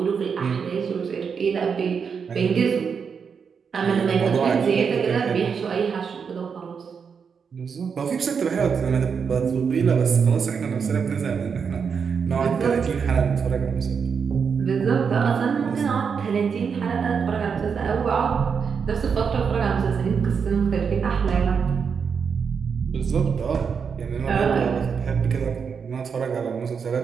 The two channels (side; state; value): left; quieter; 6.2 dB